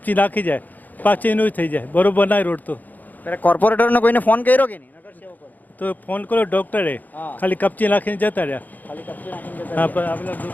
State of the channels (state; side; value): late; right; 0.083 ms